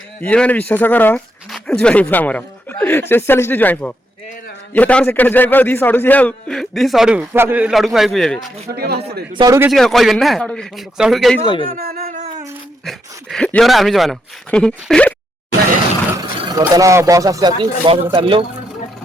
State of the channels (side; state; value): both; normal; correlation 0.80